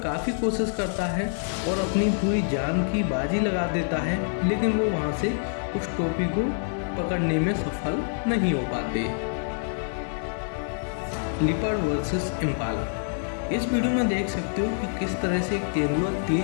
कोशिश करता है और अपनी पूरी जान की बाजी लगा देता है, लेकिन वो वहाँ से उस टोपी को पकड़ने में सफल नहीं हो पाते। Leopard versus Impala. इस वीडियो में देख सकते हो कि किस तरह से एक तेंदुआ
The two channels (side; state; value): right; silent; digital silence